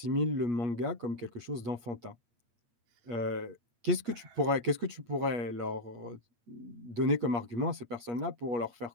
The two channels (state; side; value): late; left; 8.4 ms